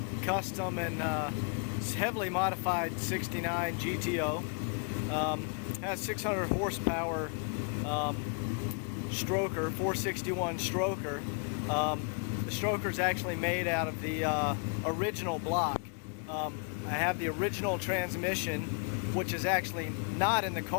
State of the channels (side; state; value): right; quieter; 40.0 dB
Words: custom and heavily modified 69 GTO. Has 600 horsepower stroker, 461 stroker. The stroker is actually made out of the original block. I have the original transmission, which is actually not in the